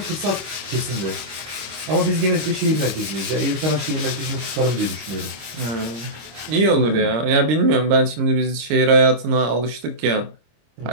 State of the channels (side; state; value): left; late; 26 ms